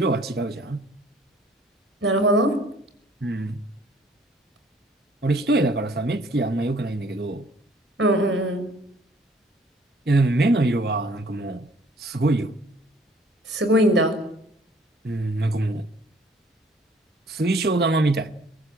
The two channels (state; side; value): normal; both; correlation 0.58